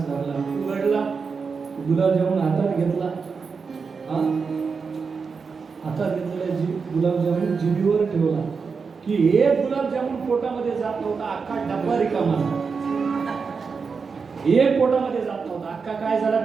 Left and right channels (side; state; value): left; quieter; 5.2 dB